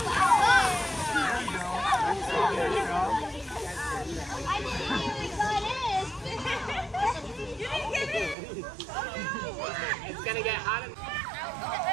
It's gonna get hot.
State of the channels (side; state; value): left; drops out; at 8.3 s